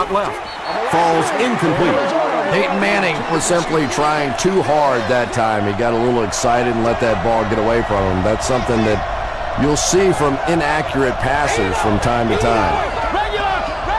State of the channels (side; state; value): both; identical; correlation 1.00